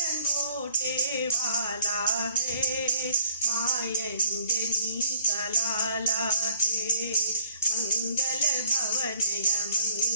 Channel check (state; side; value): inverted; both; correlation -0.60